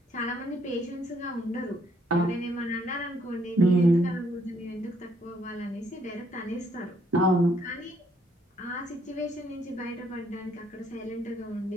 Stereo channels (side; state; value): both; normal; correlation 0.69